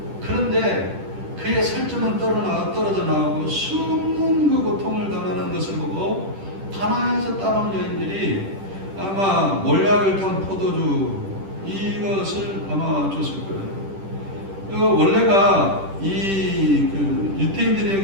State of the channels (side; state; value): left; late; 10 ms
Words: 그런데 그의 살점은 떨어져 나오고 숨는 그 고통을 당하는 것을 보고 가나안에서 따라온 여인들이 아마 몰약을 탄 포도주 이것을 아마 줬을 거예요. 원래가